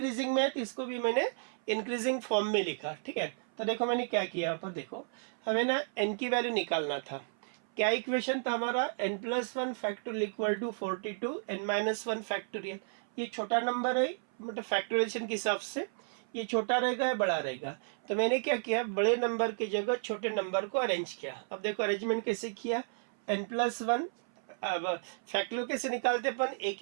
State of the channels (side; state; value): left; silent; 56 dB below the other